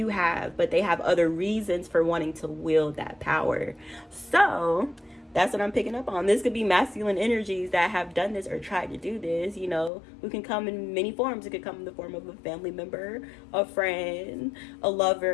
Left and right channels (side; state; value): right; drops out; at 9.9 s